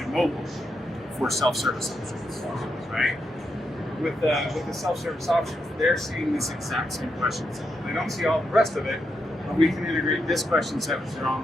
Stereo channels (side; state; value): both; normal; correlation 0.83